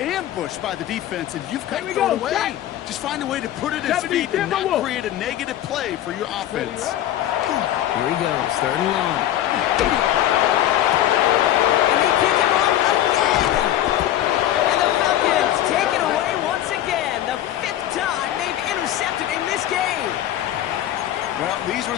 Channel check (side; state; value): right; quieter; 12.6 dB